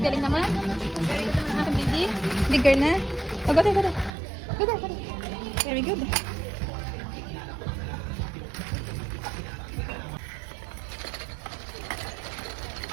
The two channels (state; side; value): drops out; left; at 4.1 s